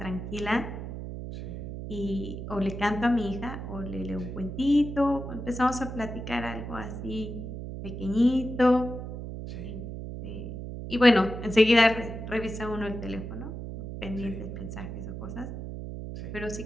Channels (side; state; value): right; noise; hum, 8 dB below the sound